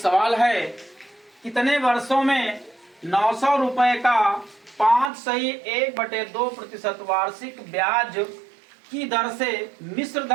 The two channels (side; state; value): left; drops out; at 5.1 s